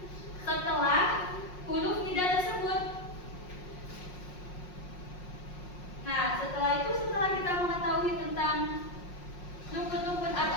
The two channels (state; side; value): late; right; 5.5 ms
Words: setelah huruf nida tersebut. Nah, setelah kita mengetahui tentang rukun-rukun